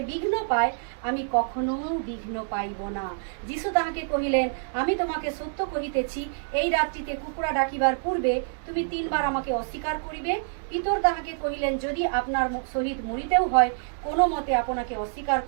বিঘ্ন পায়, আমি কখনো বিঘ্ন পাইব না। যিশু তাহাকে কহিলেন, আমি তোমাকে সত্য কহিতেছি, এই রাত্রিতে কুকুরা ডাকিবার পূর্বে তুমি 3 বার আমাকে অস্বীকার করিবে। পিতর তাহাকে কহিলেন, যদি আপনার সহিত মরিতেও হয়, কোনো মতে আপনাকে অস্বীকার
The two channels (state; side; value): silent; left; digital silence